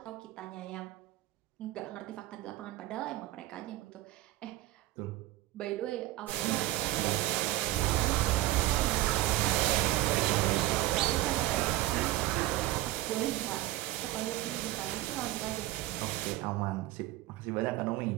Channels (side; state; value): left; quieter; 16.4 dB